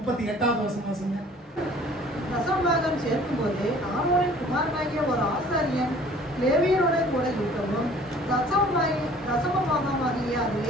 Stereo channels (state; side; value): normal; both; correlation 0.52